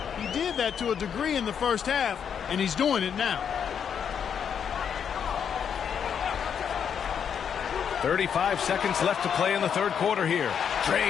He did that to a degree in the first half, and he's doing it now. 35 seconds left to play in the third quarter here.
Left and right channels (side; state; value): right; quieter; 7.7 dB